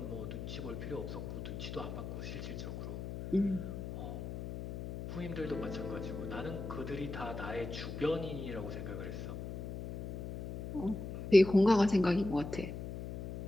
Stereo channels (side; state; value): left; noise; hum, 7 dB below the sound